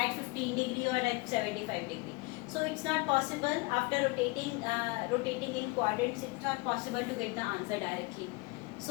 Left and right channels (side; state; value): right; quieter; 25.7 dB